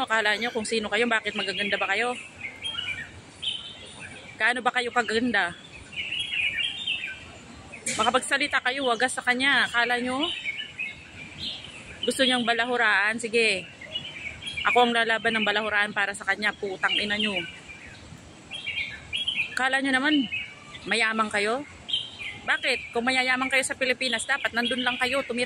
akala nyo kung sino kayo, bakit magaganda ba kayo? Kaano ba kayo kaganda? Makapagsalita kayo, wagas sa kanya, akala nyo gusto niyang balahuraan, sige. Ako ang lalaban ng balahuraan para sa kanya, putang ina nyo. Akala nyo naman mayaman kayo? Bakit? Kung mayayaman kayo sa Pilipinas, dapat nandun lang kayo,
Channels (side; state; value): both; identical; correlation 1.00